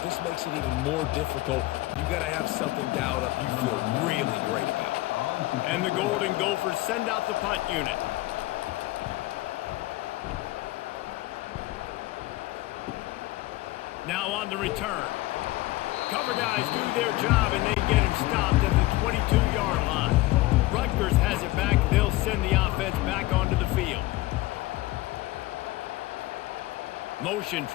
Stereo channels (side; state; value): right; quieter; 18.4 dB